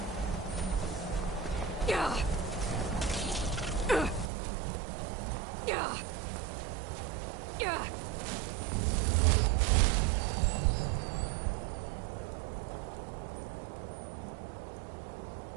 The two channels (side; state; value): left; drops out; at 4.3 s